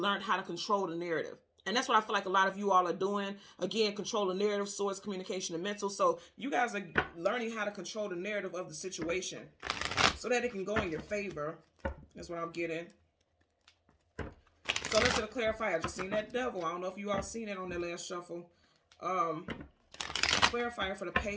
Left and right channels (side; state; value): both; identical; correlation 1.00